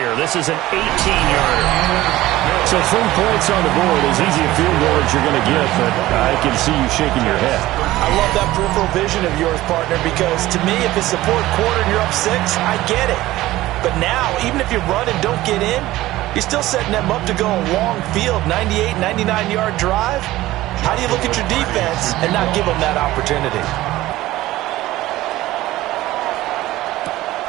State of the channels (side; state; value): left; quieter; 16.6 dB